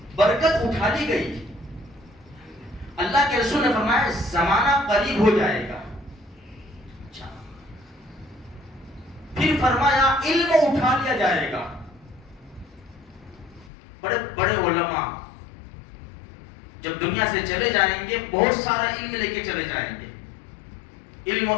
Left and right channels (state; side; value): drops out; right; at 13.7 s